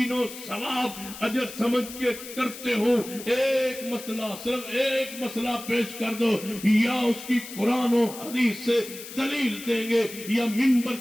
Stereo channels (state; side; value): noise; left; hiss, 13 dB below the sound